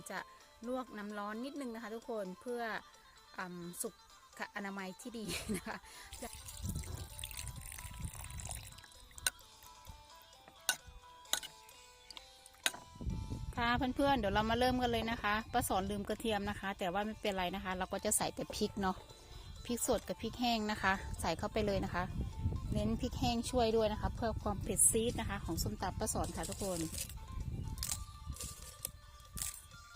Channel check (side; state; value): both; identical; correlation 1.00